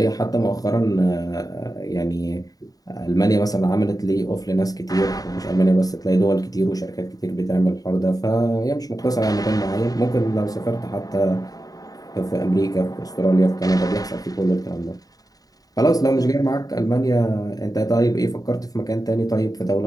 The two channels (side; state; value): right; late; 0.18 ms